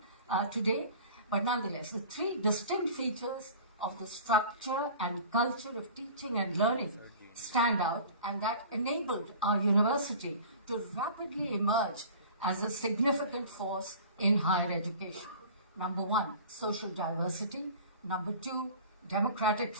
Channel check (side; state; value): both; inverted; correlation -0.42